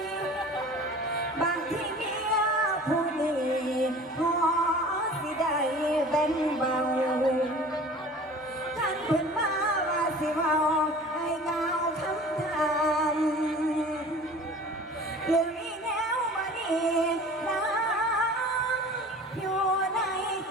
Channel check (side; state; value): both; normal; correlation 0.43